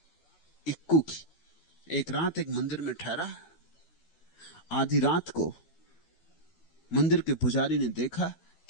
इक्कू की। एक रात एक मंदिर में ठहरा, आधी रात को मंदिर के पुजारी ने देखा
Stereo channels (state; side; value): late; right; 12 ms